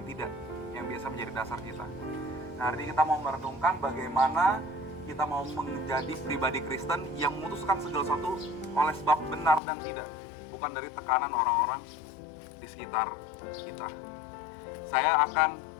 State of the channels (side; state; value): right; drops out; at 9.6 s